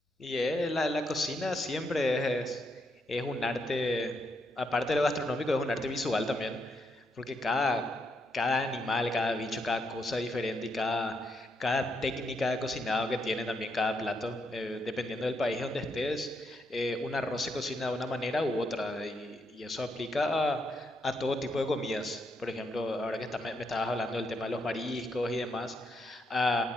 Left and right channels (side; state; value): both; normal; correlation 0.79